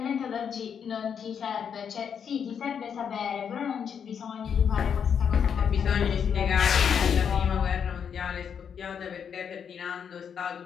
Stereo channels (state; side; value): quieter; right; 7.5 dB